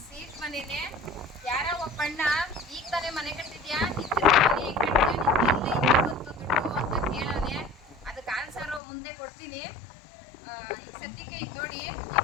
ಸೀಟ್ ಮನೆನೆ. ಯಾರೋ ಒಬ್ಬಣ್ಣ ಈಗ ತಾನೇ ಮನೆ ಕಟ್ಟಿದ್ಯಾ, ಮನೆ ಕಟ್ಟಿದ್ಯಾ, ಬಂತು ದುಡ್ಡು ಅಂತ ಕೇಳೋನೆ. ಅದಕ್ಕೆ ಆನ್ಸರು ಮುಂದೆ ಕೊಡ್ತೀನಿ. ಈ ಸದ್ಯಕ್ಕೆ ಈಗ ನೋಡಿ ಈ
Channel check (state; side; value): drops out; right; at 8.8 s